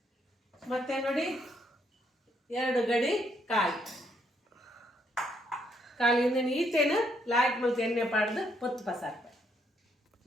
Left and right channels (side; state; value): both; normal; correlation 0.73